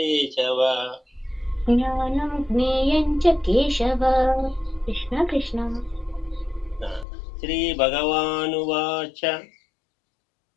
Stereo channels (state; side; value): drops out; right; at 7.1 s